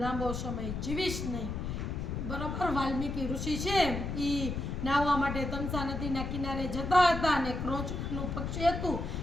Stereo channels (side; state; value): left; noise; rumble, 4 dB below the sound